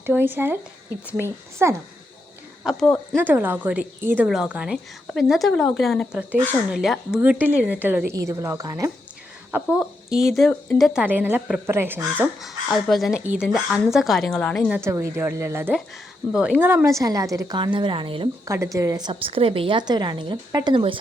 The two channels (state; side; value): normal; both; correlation 0.82